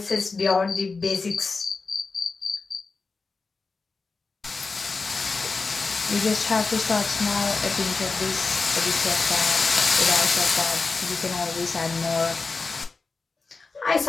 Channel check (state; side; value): quieter; right; 4.2 dB